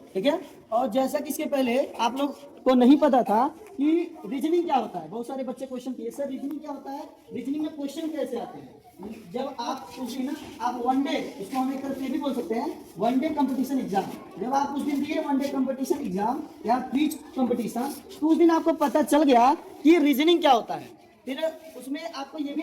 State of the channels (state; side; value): identical; both; correlation 1.00